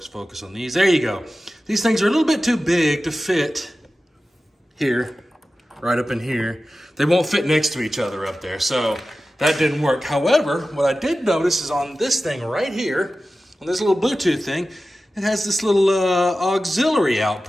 on these. There you go. These things are a little bit too big to fit here, right up in here. They won't fit next to each other up there, so that didn't work. However, what I did notice is on this thing right here, on this little Bluetooth thing, it has this little auxiliary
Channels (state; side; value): normal; both; correlation 0.94